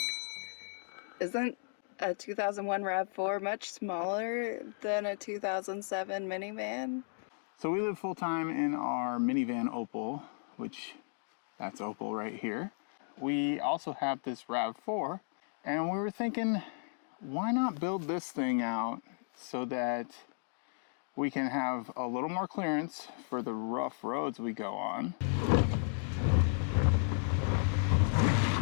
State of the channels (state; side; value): silent; right; digital silence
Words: isn't a 2001 RAV4 much smaller than a 2007 minivan? So we live full-time in our minivan Opal, which that's Opal right here. We also have this RAV4, and we were thinking, why not build this thing out so that we can have a little more clearance for the rough roads we go on.